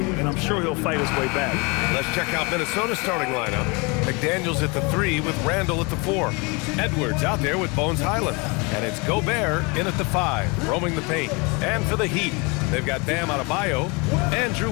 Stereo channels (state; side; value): quieter; right; 29.0 dB